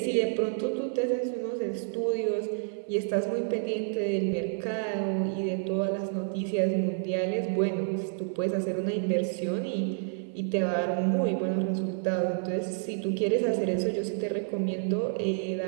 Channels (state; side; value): silent; left; 58 dB below the other